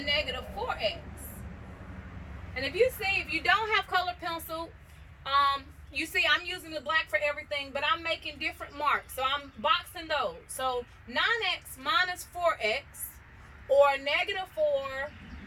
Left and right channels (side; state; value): both; identical; correlation 1.00